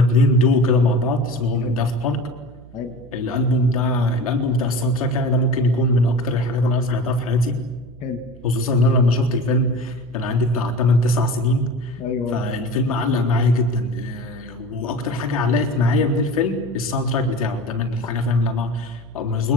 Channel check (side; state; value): right; noise; hum, 21 dB below the sound